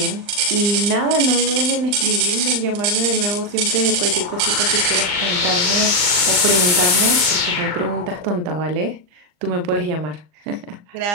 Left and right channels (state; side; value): late; left; 39 ms